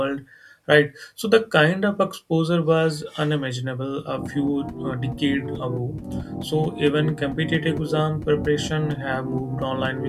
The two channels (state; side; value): identical; both; correlation 1.00